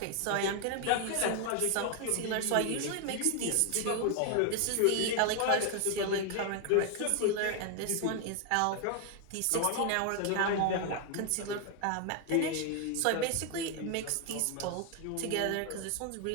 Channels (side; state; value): both; different; correlation 0.00